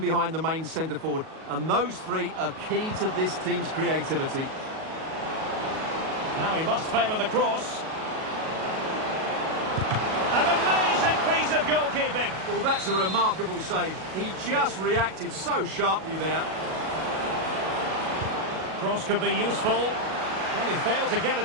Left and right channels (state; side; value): late; left; 37 ms